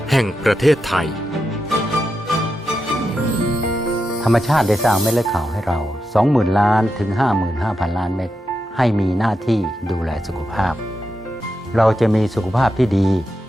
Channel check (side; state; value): both; normal; correlation 0.87